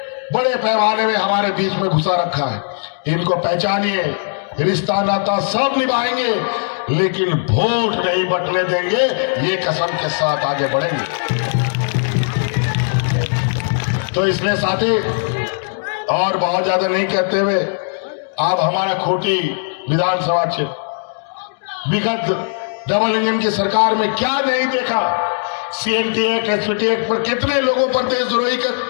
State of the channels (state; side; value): silent; right; digital silence